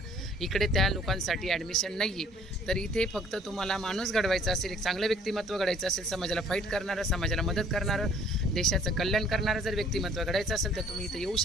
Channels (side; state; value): both; normal; correlation 0.57